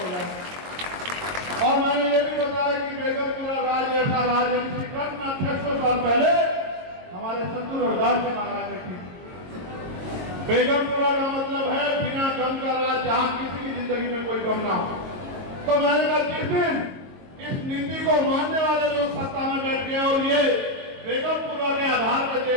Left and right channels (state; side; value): late; left; 22 ms